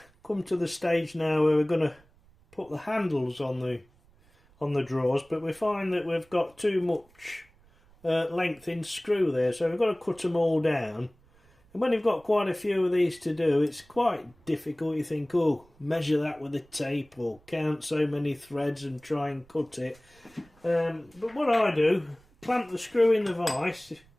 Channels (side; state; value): right; noise; rumble, 30 dB below the sound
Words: come to the stage now where we're going to put the handles on the drawers, but we find that we've got too much length in screw there, so we've got to cut them all down. And when you've got quite a few of these to do, it's quite difficult. You think, oh, measure that with a tape or count so many threads and try and cut it. But what I do, clamp the screw in the vise,